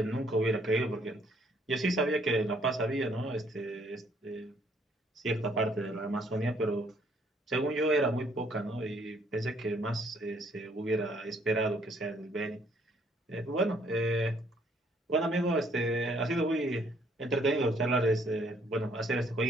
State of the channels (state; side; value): normal; both; correlation 0.65